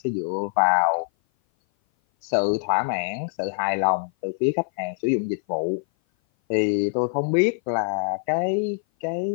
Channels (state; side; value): silent; right; 57 dB below the other